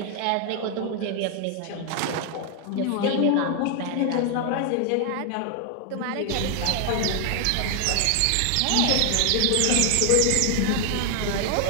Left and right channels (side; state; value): both; different; correlation 0.00